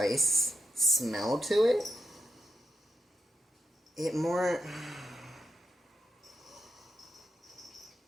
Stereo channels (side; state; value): both; normal; correlation 0.85